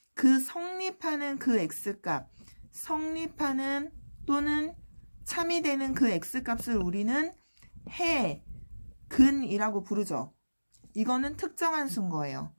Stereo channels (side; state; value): both; inverted; correlation -1.00